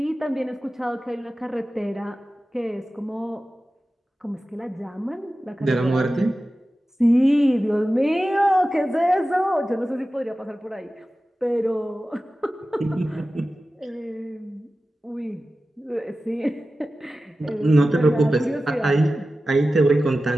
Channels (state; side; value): normal; both; correlation 0.95